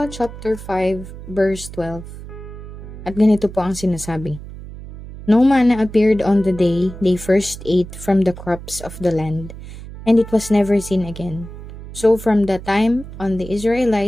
chapter 5 verse 12. At ganito po ang sinasabi. No manna appeared on the day they first ate from the crops of the land, and it was never seen again. So from that time on the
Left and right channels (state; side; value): noise; right; hum, 13 dB below the sound